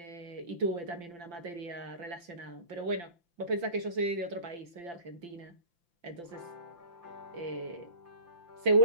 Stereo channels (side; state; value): left; late; 5.8 ms